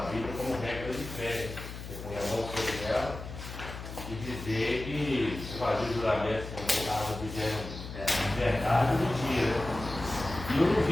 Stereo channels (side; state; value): left; noise; hum, 10 dB below the sound